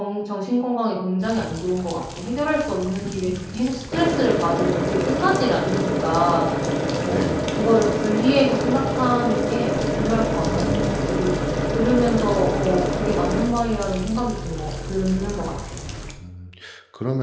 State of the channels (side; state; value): both; identical; correlation 1.00